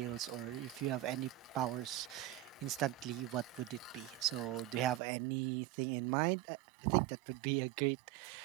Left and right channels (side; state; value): left; drops out; at 5.0 s